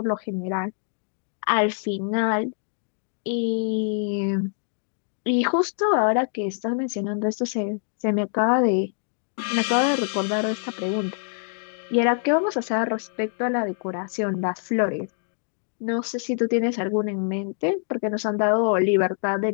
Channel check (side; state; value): right; silent; digital silence